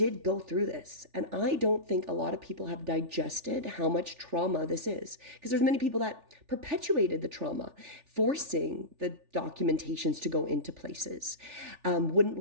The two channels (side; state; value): left; late; 3.4 ms